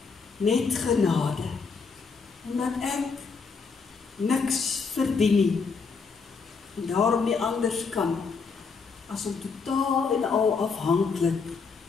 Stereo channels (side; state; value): right; quieter; 5.0 dB